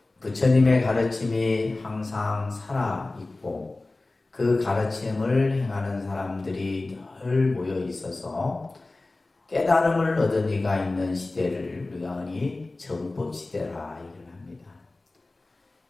부처님의 가르침이 항상 살아있고 그 가르침을 행하는 사람들이 늘 모여 있어서 깨달음을 얻은 이가 있는 시대를 우리가 흔히 정법 시대라 얘기를 합니다.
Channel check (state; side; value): quieter; right; 3.1 dB